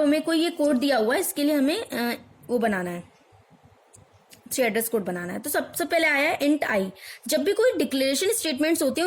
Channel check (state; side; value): identical; both; correlation 1.00